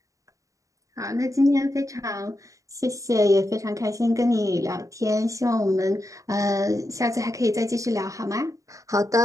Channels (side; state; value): left; late; 0.16 ms